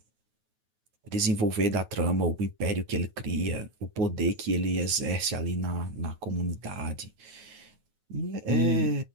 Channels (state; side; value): late; left; 9.3 ms